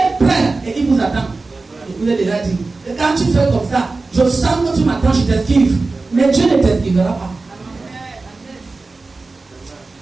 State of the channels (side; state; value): left; quieter; 3.6 dB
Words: prêt et il vous attend. Je vous ai déjà dit. Et quand tu fais comme ça, je sens que tu m'attends, je t'esquive. Mais Dieu ne t'esquivera pas.